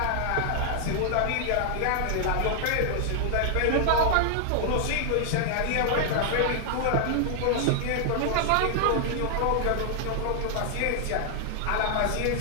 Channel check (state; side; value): different; both; correlation 0.00